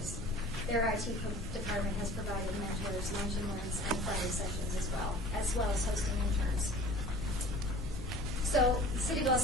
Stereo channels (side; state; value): both; normal; correlation 0.44